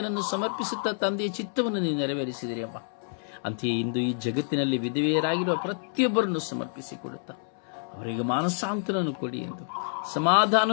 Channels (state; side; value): silent; right; 59 dB below the other